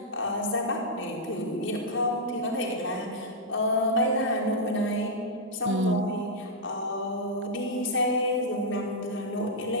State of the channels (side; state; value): both; normal; correlation -0.07